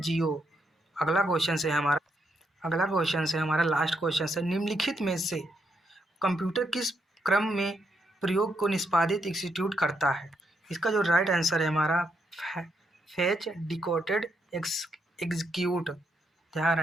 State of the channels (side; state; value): both; normal; correlation 0.79